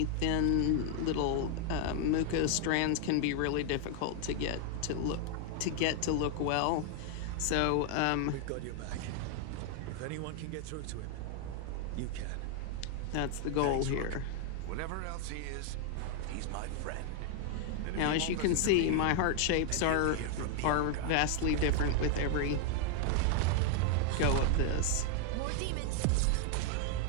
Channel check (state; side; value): different; both; correlation 0.00